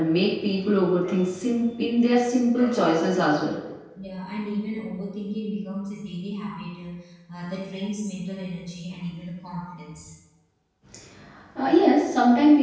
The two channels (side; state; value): both; identical; correlation 1.00